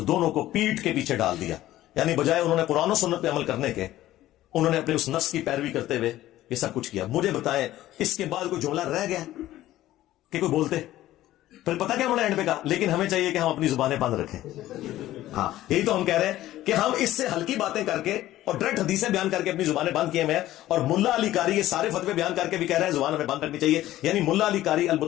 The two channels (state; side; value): quieter; right; 14.7 dB